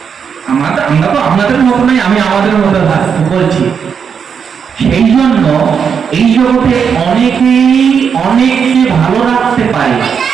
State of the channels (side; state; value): left; quieter; 6.8 dB